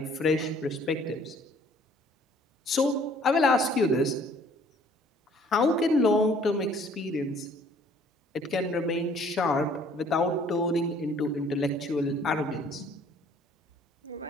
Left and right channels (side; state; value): both; normal; correlation 0.57